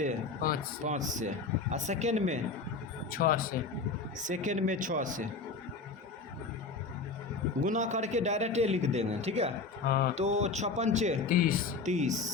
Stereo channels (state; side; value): quieter; right; 4.2 dB